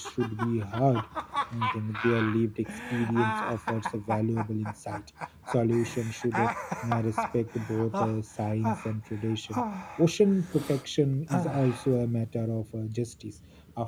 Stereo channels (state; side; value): identical; both; correlation 1.00